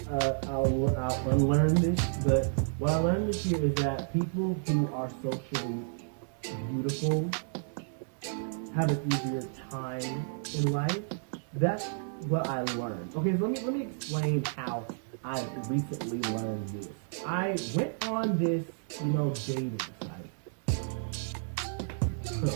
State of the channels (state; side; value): silent; left; digital silence